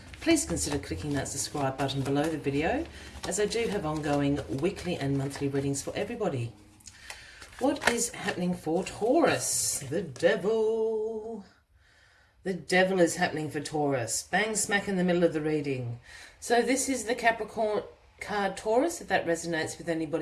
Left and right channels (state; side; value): identical; both; correlation 1.00